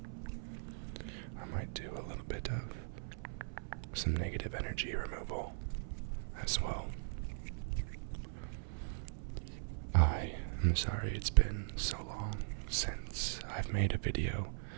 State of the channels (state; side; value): silent; left; 52 dB below the other